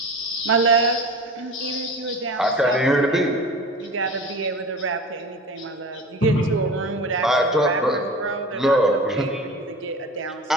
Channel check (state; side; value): normal; both; correlation 0.35